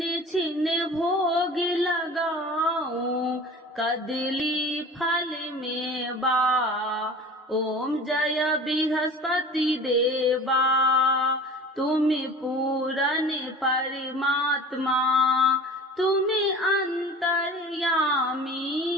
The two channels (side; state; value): both; normal; correlation 0.40